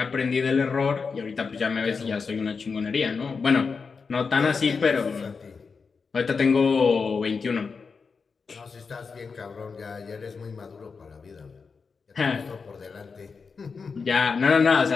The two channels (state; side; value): quieter; right; 5.1 dB